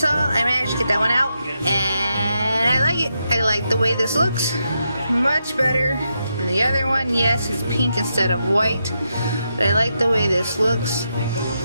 I managed to get that one out, and I like it. I like the way this looks. Much better than the other one. Yes, it's pink instead of white, but I like the way this looks,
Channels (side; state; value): both; inverted; correlation -0.84